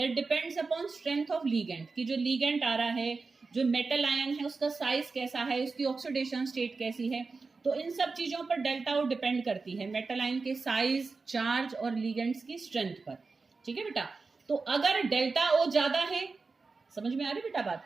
depends upon strength of ligand, कि जो लीगेंट आ रहा है, जो मेटल आयन है, उसका साइज कैसा है, उसकी ऑक्सीडेशन स्टेट कैसी है, तो इन सब चीजों पर डेल्टा ओ डिपेंड करती है, मेटल आयन के साइज, चार्ज और लीगेंट्स की स्ट्रेंथ पर। ठीक है बेटा, तो अगर डेल्टा ओ ज्यादा है, समझ में आ रही बेटा बात?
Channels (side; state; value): left; quieter; 4.2 dB